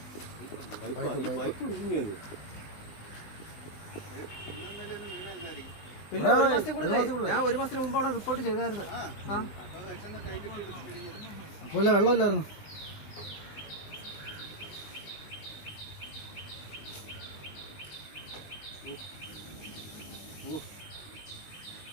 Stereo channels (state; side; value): late; right; 20 ms